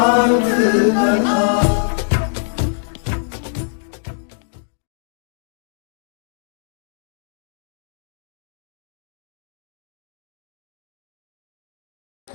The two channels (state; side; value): silent; right; 63 dB below the other